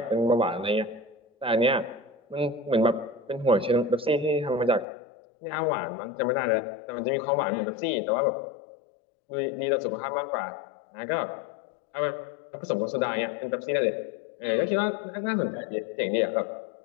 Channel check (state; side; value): drops out; right; at 4.9 s